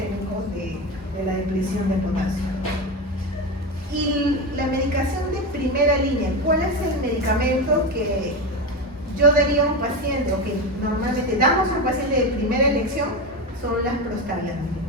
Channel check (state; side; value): normal; both; correlation 0.18